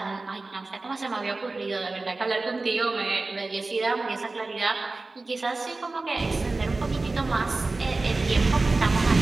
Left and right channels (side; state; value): left; quieter; 3.4 dB